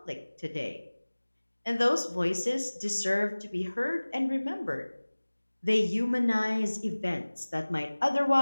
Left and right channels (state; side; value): inverted; both; correlation -1.00